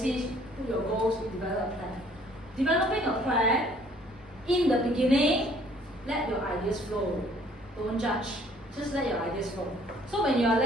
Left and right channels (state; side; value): normal; both; correlation 0.59